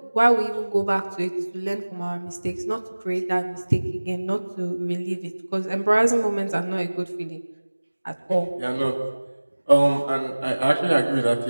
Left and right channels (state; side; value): inverted; both; correlation -1.00